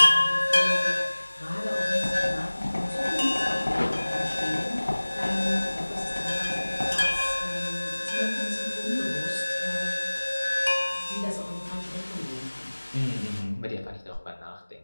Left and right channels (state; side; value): inverted; both; correlation -1.00